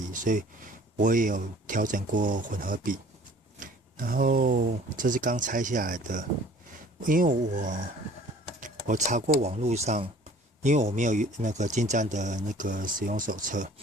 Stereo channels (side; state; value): both; normal; correlation 0.51